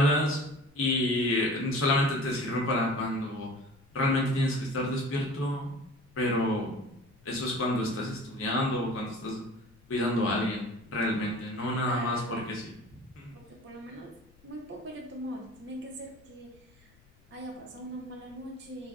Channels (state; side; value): noise; left; rumble, 29 dB below the sound